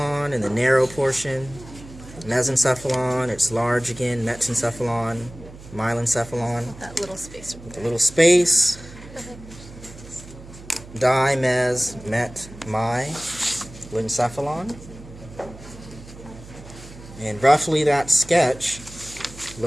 in the narrow portion, mesencephalon, it's large again, metencephalon, myelencephalon, That little space. a little space, di, mes, met, my, lencephalon. And roughly that sketch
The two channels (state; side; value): noise; right; hum, 17 dB below the sound